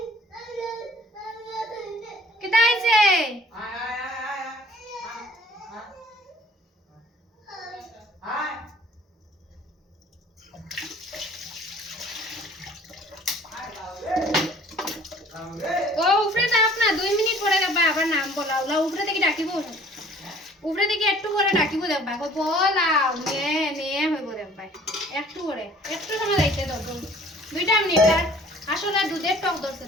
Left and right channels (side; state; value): both; normal; correlation 0.54